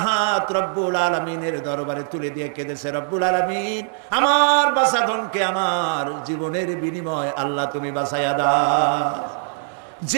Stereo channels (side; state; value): left; silent; digital silence